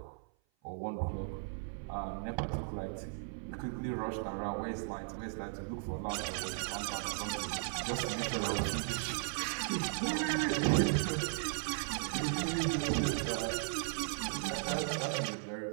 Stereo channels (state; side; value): silent; left; 53 dB below the other